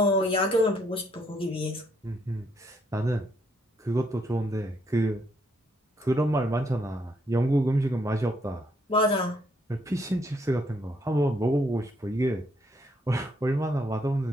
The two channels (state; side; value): normal; both; correlation 0.72